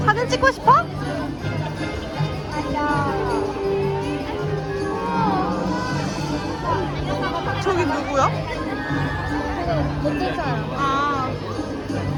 사진 찍고 싶어? 저기 누구야? 어떤 사람? 아,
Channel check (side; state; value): both; identical; correlation 1.00